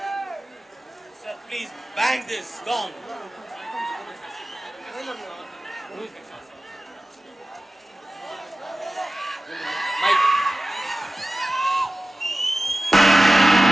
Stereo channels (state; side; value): normal; both; correlation 0.96